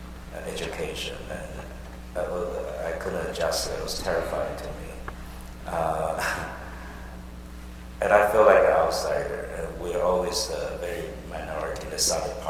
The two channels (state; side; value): identical; both; correlation 1.00